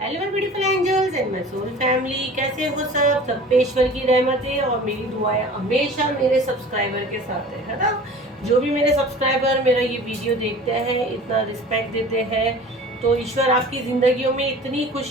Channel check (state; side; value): normal; both; correlation 0.42